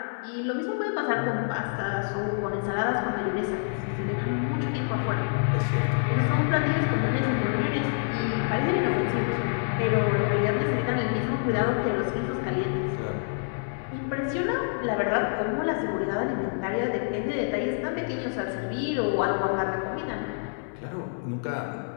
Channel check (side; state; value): right; silent; 59 dB below the other